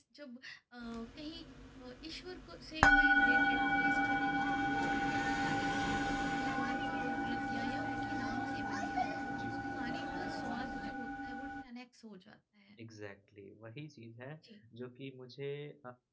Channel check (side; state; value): both; identical; correlation 1.00